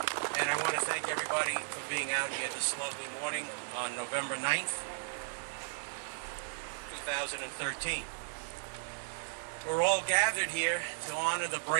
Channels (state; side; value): silent; left; digital silence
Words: And I want to thank everybody for being out here this lovely morning on November 9th, 2013. We're all gathered here to honor the